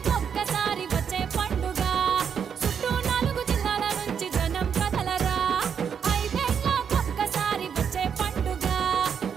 వచ్చే పండుగ చుట్టూ 4 జిల్లాల నుంచి జనం కదలరా ఐదేళ్ళకొక్కసారి వచ్చే పండుగ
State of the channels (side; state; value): left; quieter; 7.3 dB